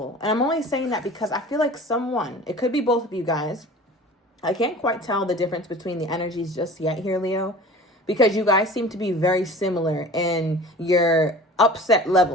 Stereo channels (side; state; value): both; normal; correlation 0.41